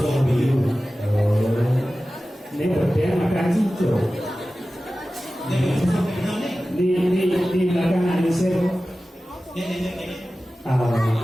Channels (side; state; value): both; normal; correlation 0.95